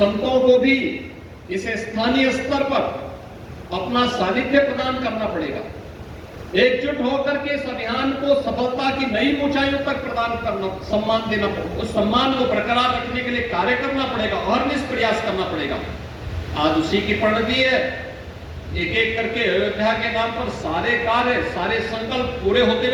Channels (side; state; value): both; identical; correlation 1.00